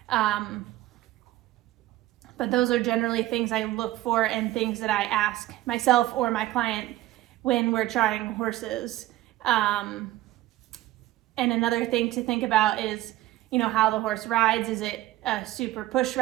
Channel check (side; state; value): left; quieter; 15.8 dB